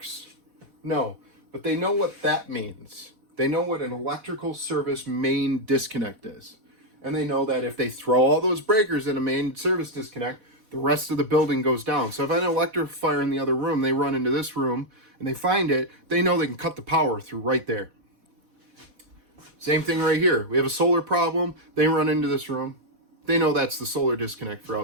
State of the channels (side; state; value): left; late; 4.1 ms